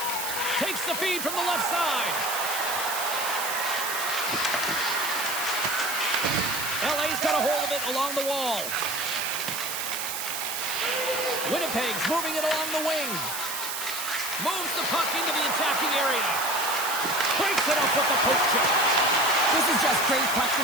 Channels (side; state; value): right; noise; hiss, 4 dB below the sound